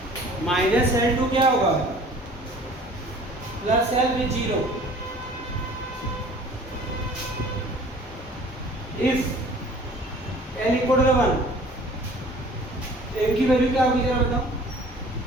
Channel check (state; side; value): normal; both; correlation 0.49